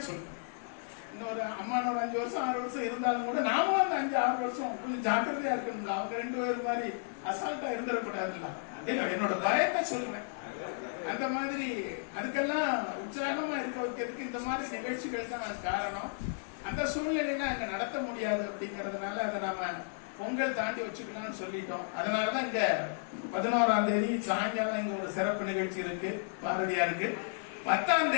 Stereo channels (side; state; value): right; silent; 56 dB below the other